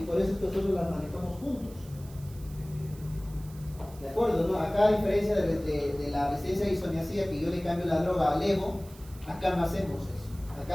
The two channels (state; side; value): noise; right; hiss, 22 dB below the sound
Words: por eso es que nosotros las manejamos juntos. ¿De acuerdo? ¿No? Acá, a diferencia de la resistencia a isoniazida, que yo le cambio la droga a levo, acá no hacemos eso.